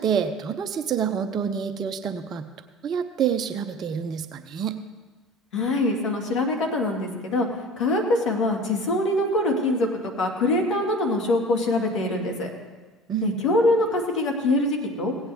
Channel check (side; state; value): both; normal; correlation 0.39